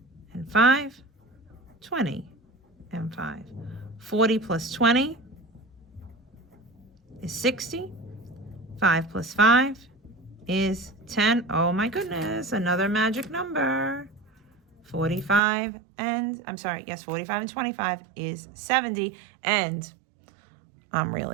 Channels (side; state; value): left; drops out; at 15.4 s